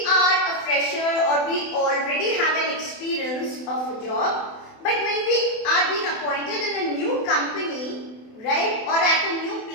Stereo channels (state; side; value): late; right; 27 ms